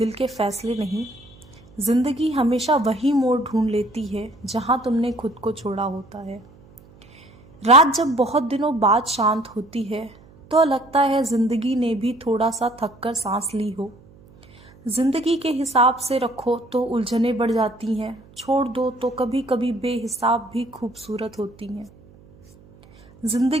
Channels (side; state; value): right; noise; hum, 25 dB below the sound